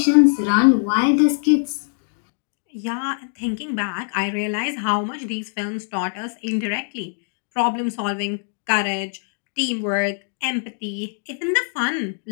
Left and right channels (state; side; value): silent; right; digital silence